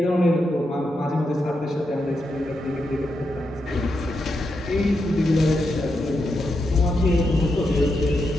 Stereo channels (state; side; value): normal; both; correlation 0.84